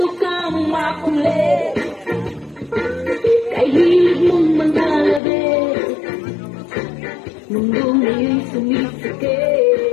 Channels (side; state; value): right; drops out; at 5.2 s